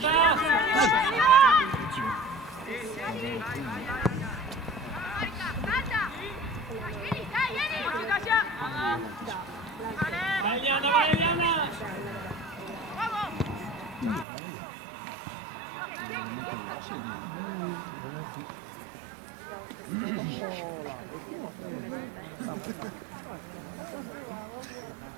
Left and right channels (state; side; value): drops out; left; at 14.2 s